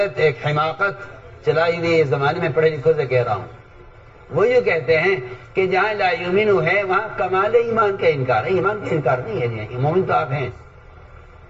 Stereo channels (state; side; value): identical; both; correlation 1.00